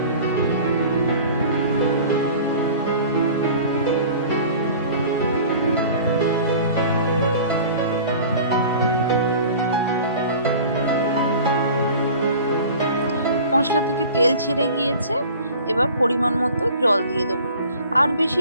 মশলা থেকে তেল ছেড়ে গিয়েছে। এবার পরিমাণ মতো জল দিয়ে দেবো। আর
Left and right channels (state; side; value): inverted; both; correlation -0.43